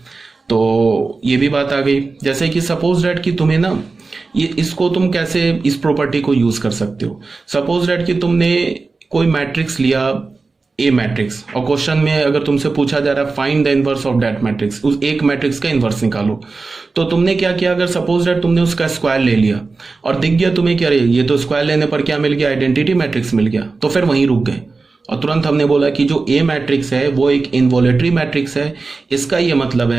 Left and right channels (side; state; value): left; quieter; 4.0 dB